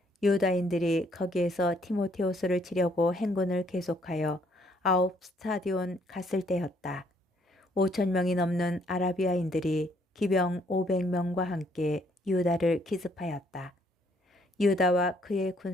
유다인들이 거기에서 티모테오스를 치려고 행군을 계속하여 9 스타디온 갔을 때였다. 5,000명이 넘는 아라비아인들이 기병 500명과 함께 유다를 기습하였다. 유다와 그의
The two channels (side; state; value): both; normal; correlation 0.67